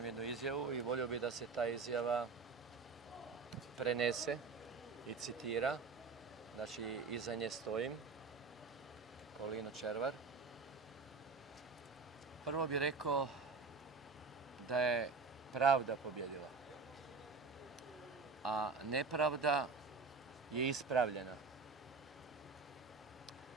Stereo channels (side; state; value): left; quieter; 4.5 dB